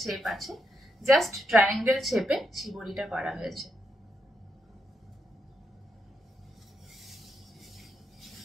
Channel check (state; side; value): normal; both; correlation 0.82